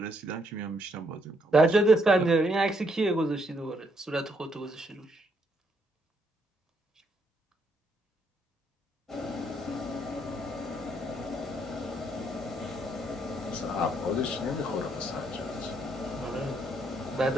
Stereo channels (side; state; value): both; normal; correlation 0.73